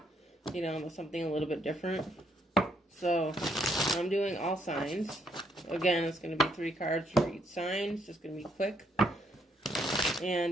something a little bit different. So I'm doing all signs. Again, it's going to be 3 cards for each sign. It's just going to be quick,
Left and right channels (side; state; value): both; normal; correlation 0.72